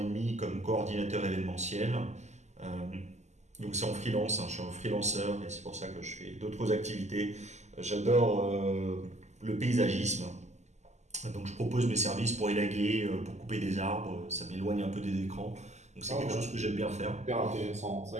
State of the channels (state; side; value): late; left; 0.33 ms